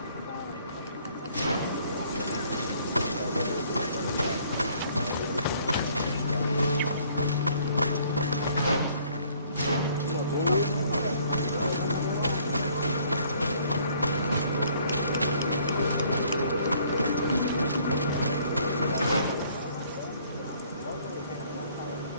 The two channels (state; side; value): inverted; both; correlation -0.61